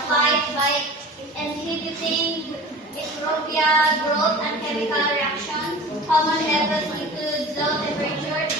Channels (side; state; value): both; normal; correlation 0.38